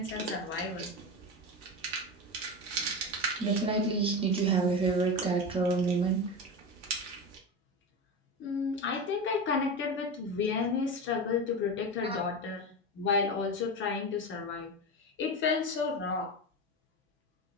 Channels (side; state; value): both; normal; correlation 0.22